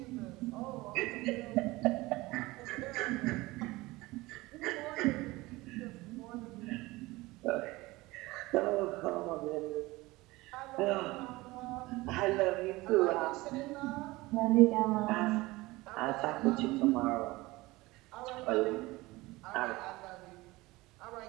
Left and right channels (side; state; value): left; quieter; 20.6 dB